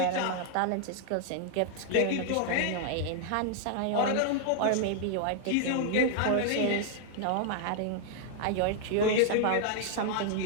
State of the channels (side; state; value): both; different; correlation -0.01